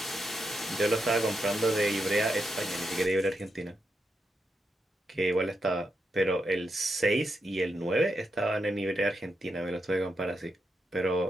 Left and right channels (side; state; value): both; normal; correlation 0.84